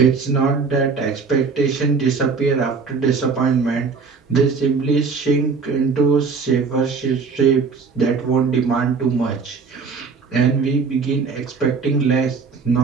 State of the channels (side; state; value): left; quieter; 5.0 dB